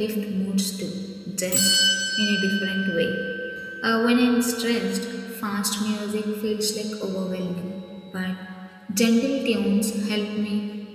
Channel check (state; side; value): identical; both; correlation 1.00